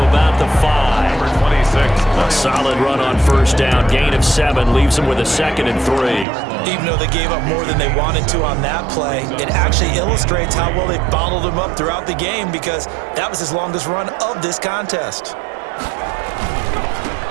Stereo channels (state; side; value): drops out; left; at 6.2 s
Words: about the 5. Number 26. A solid run on first down. Gain of 7 leaves him with a 2nd and 3. Even though they gave up more than they wanted to on that play, it actually illustrates how well they bottled him up throughout the game because that was his longest run of this contest.